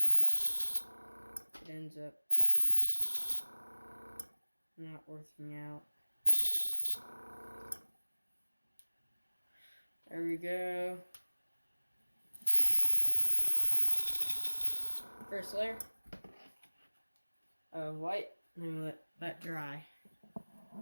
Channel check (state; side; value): inverted; both; correlation -1.00